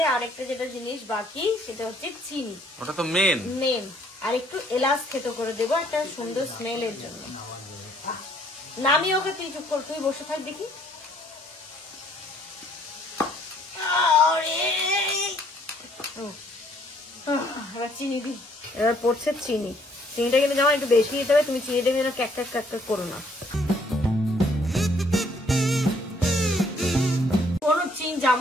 আরেকটা যেটা জিনিস বাকি সেটা হচ্ছে চিনি। ওটা তো মেন। আর একটু এলাচ থেতো করে দেবো একটা সুন্দর স্মেলের জন্য। নামিয়ে ওকে, তুই চুপ কর, তুই বসে থাক দেখি। এবার চিনি দি, এবার পড়ছে চিনি। চিনিটা কিন্তু যেমন একটু বেশি দিতে হবে, তুমি চিনিটা কিন্তু ক্যাক ক্যাক করো না।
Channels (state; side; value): normal; both; correlation 0.64